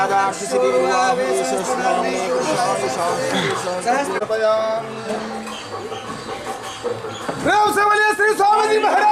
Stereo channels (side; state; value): both; identical; correlation 1.00